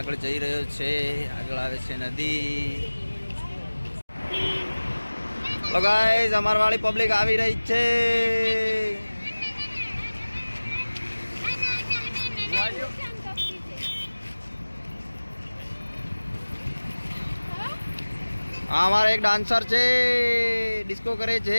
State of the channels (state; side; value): inverted; both; correlation -1.00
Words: જઈ રહ્યો છે. આગળ આવે છે નદી. તો ગાઈઝ, અમાર વાળી પબ્લિક આવી રહી છે. આ અમારા એક ડાન્સર છે, ડિસ્કો કરે